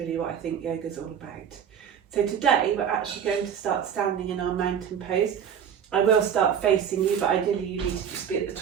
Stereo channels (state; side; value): quieter; left; 8.2 dB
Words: what I think yoga is all about. So today we're actually going to start standing in our mountain pose. I will start facing you, but ideally you need to just be at the